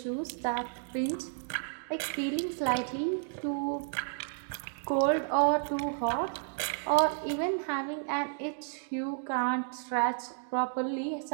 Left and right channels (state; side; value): silent; left; digital silence